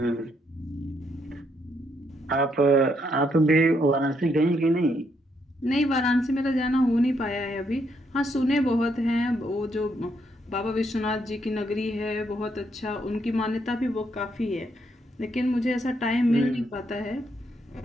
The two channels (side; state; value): both; normal; correlation 0.75